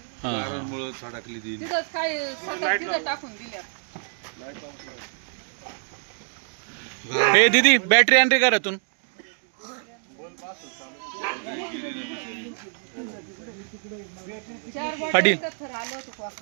हा. तिथं काय सतत तिथं टाकून दिल्या. हे दीदी बॅटरी आण रे घरातून. पाटील. थर आलं होतं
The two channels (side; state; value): left; silent; 61 dB below the other